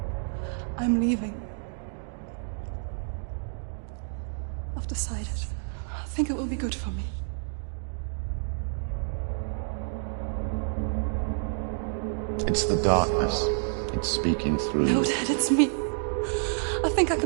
I'm leaving. I've decided. I think it will be good for me. It's the darkness. It's speaking through No, you. Dad, it's me. I think I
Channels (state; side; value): silent; left; digital silence